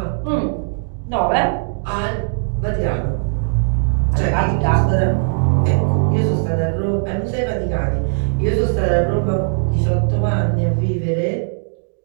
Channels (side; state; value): left; silent; digital silence